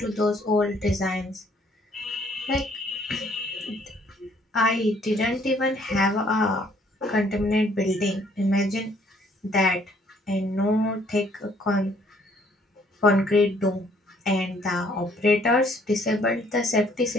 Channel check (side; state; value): both; normal; correlation 0.63